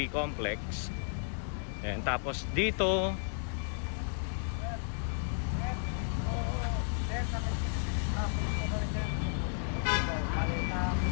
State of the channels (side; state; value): right; silent; digital silence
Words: complex. And tapos dito